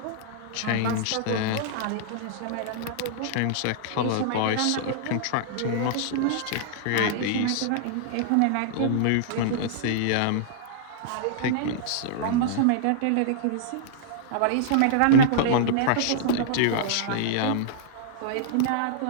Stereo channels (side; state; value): both; different; correlation -0.02